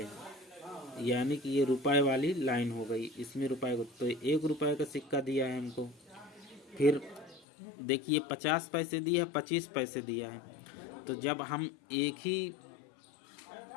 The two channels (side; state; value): right; drops out; at 7.5 s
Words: यानी कि ये रुपए वाली लाइन हो गई, इसमें रुपए को तो 1 रुपए का सिक्का दिया है हमको। फिर देखिए 50 पैसे दिया है, 25 पैसे दिया है। तो जब हम एक